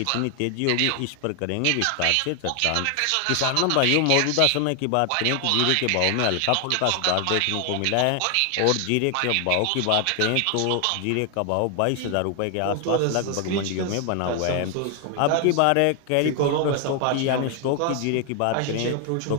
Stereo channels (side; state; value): both; different; correlation 0.00